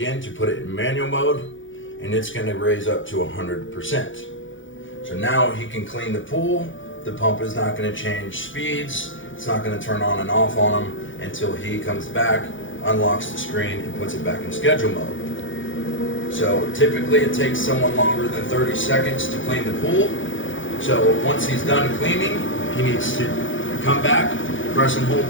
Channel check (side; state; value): right; late; 0.56 ms